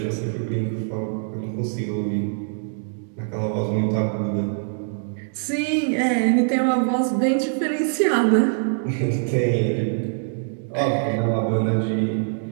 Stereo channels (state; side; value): silent; left; digital silence